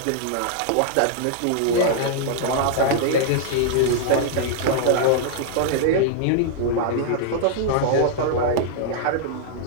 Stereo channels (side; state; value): both; different; correlation -0.01